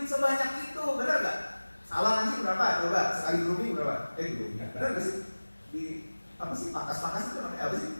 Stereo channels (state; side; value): inverted; both; correlation -1.00